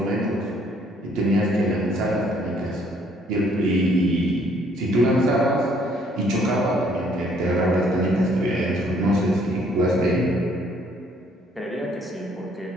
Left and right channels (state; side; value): normal; both; correlation 0.64